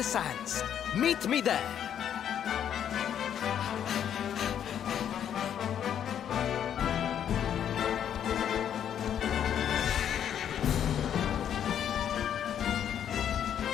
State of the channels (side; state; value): right; quieter; 9.4 dB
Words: sands. Meet me there.